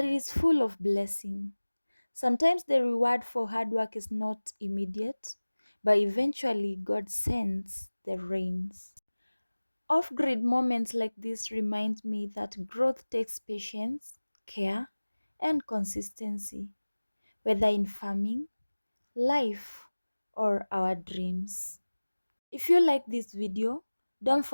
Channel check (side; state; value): both; inverted; correlation -1.00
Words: it is full of blessing. Sometimes the reward for hard work is not immediate, but eventually God sends the rains. Off-grid moments like this remind me that growth takes patience, care, and consistency, whether in farming, life, or our dreams. If you like this video, don't